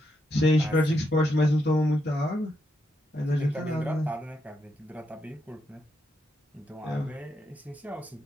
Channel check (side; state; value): both; normal; correlation 0.81